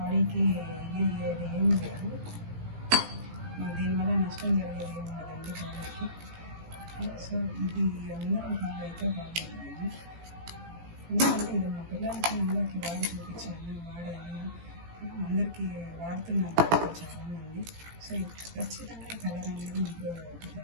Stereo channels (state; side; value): late; left; 18 ms